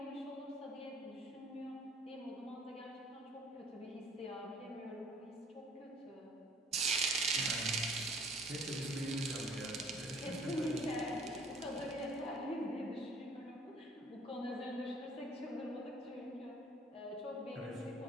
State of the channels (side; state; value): both; normal; correlation 0.54